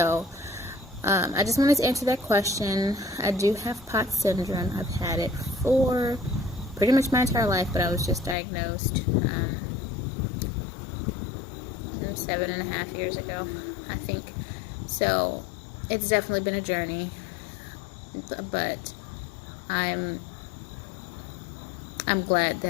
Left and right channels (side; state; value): right; drops out; at 8.3 s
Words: I just wanted to answer that question. I do have POTS syndrome. I've had it for pretty much my entire life, but I was just diagnosed 7.5 years ago, I think. So it's definitely been a journey, but I'm glad